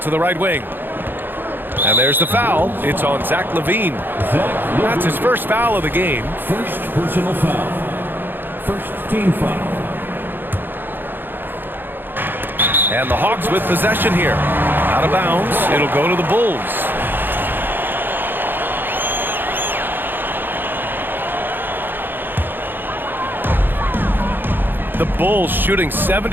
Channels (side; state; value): left; late; 0.096 ms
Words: to the right wing. And there's the foul. It's on Zach LaVine. That's his first foul of the game. First personal foul. First team foul. And the Hawks with possession here. Out of bounds. It'll go to the Bulls. The Bulls shooting